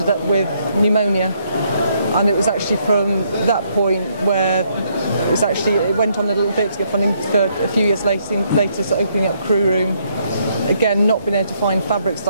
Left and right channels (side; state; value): both; inverted; correlation -0.71